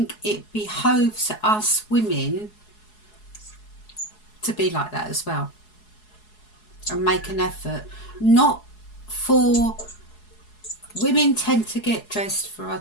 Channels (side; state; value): right; late; 4.7 ms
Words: it behoves us women to be like that as well. And make an effort. Not for... Women tend to get dressed for